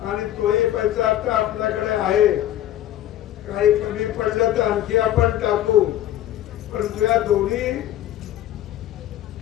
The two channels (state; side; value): quieter; right; 12.8 dB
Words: आणि तोही पैसा आता आपल्याकडे आहे. काही कमी पडलं तर आणखी आपण टाकू. परंतु या दोन्ही